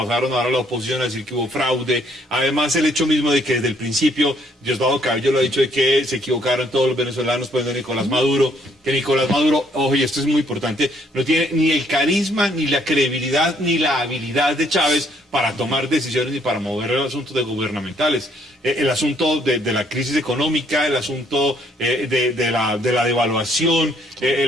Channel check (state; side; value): normal; both; correlation 0.67